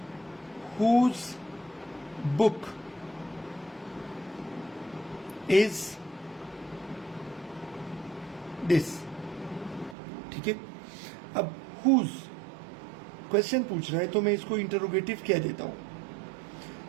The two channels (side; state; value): left; drops out; at 10.0 s